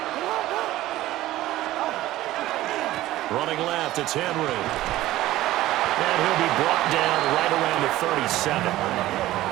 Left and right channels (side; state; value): left; quieter; 15.8 dB